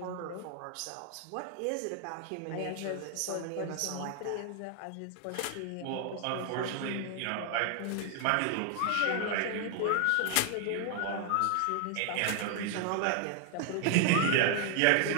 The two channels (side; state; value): both; different; correlation 0.00